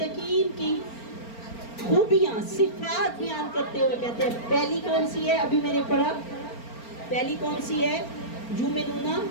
کی خوبیاں، صفات بیان کرتے ہوئے کہتے ہیں پہلی کون سی ہے؟ ابھی میں نے پڑھا، پہلی کون سی ہے؟ یؤمنون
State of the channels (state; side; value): late; right; 4.4 ms